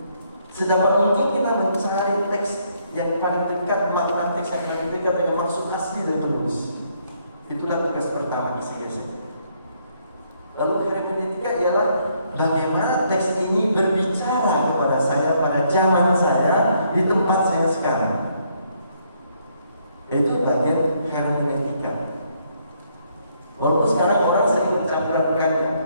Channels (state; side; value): inverted; both; correlation -0.70